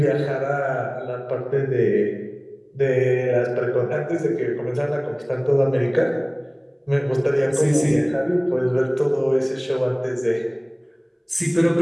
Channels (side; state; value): both; identical; correlation 1.00